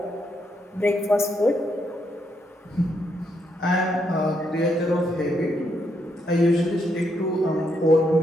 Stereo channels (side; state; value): both; normal; correlation 0.77